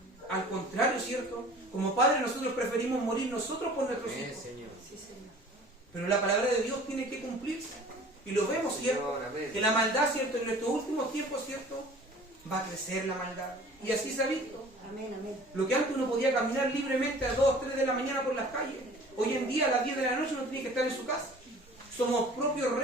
Al contrario, ¿cierto? Como padres nosotros preferimos morir nosotros por nuestros Amén, hijos. Señor. Sí, Señor. Pero la palabra de Dios tiene que cumplirse. Y lo vemos, ¿cierto? Señor, amén. Que la maldad, ¿cierto? En nuestros últimos tiempos, ¿cierto? Va a crecer la maldad. Y así se ha visto. Amén, amén. Lo que antes uno podía caminar libremente a 2, 3 de la mañana por las calles, hoy en día a las 10 de la noche uno tiene que estar en su casa. Somos propios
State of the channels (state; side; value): normal; both; correlation 0.47